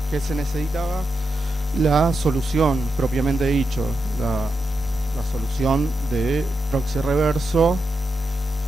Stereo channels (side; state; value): both; normal; correlation 0.87